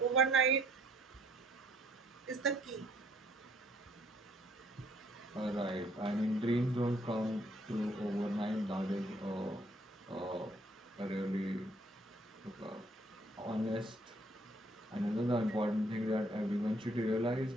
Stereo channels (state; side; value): normal; both; correlation 0.64